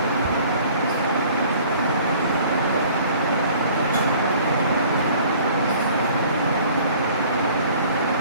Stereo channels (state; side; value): inverted; both; correlation -0.52